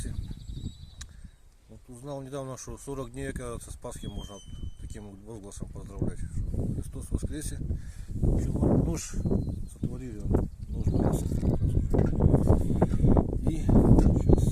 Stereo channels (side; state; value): both; identical; correlation 1.00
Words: Вот узнал недавно, что 40 дней, оказывается, с Пасхи можно таким возгласом поздравлять. Христос воскресе! Нож сотворили, нож брался. И